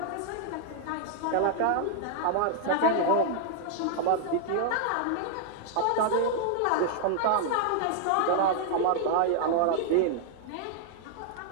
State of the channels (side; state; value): both; different; correlation 0.00